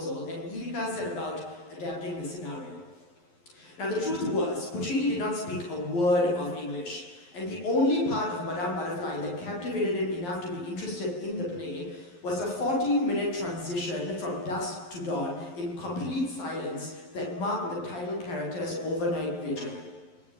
and Lirica set about adapting the scenario. Now the truth was, Puccini did not speak a word of English, and the only part of Madame Butterfly that captivated him enough to be interested in the play was a 14-minute transition from dusk to dawn in complete silence that marked the title character's overnight vigil.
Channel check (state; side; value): late; right; 11 ms